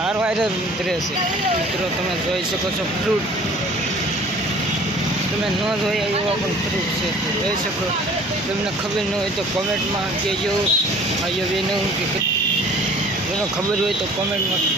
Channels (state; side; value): normal; both; correlation 0.50